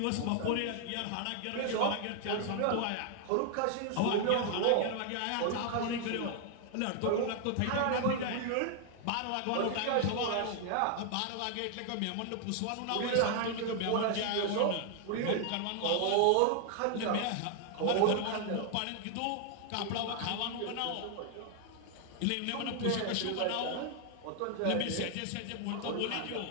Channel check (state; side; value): different; both; correlation 0.00